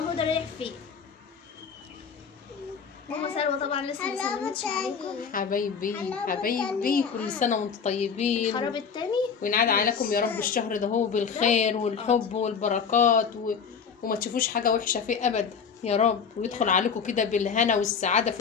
رايح فين. ماما سلوى طبعا لسه ما سلمتش عليكم. حبايبي كل سنه وانتم طيبين. الخراب التاني وينعاد عليكم يا رب الشهر ده هو بالخير والحب والبركات وما تشوفوش حاجه وحشه فيه ابدا يا رب. ويدخل عليكم كده بالهنا والسعاده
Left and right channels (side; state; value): right; quieter; 6.4 dB